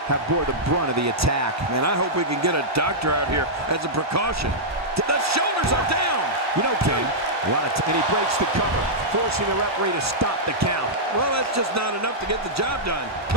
have bore the brunt of the attack. Man, I hope we can get a doctor out here as a precaution. The shoulders are down. You know, King, and he breaks the cover, forcing the referee to stop the count. Well, that's just not enough to get the job done.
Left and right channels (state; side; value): normal; both; correlation -0.10